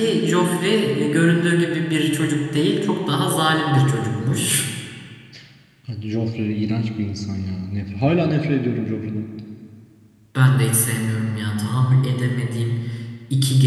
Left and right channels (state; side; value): identical; both; correlation 1.00